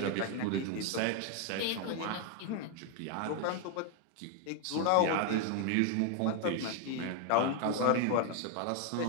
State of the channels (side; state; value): both; different; correlation 0.01